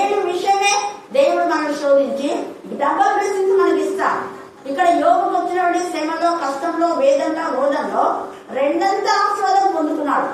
విషయమే దేవుడు మనల్ని శోధించి డబల్ బ్లెస్సింగ్స్ మనకి ఇస్తాడు. ఇక్కడ యోగుకు వచ్చినటువంటి శ్రమలో, కష్టంలో, వేదనలో, రోదంలో రెండంతా ఆశీర్వాదం పొందుకున్నాడు.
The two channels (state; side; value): identical; both; correlation 1.00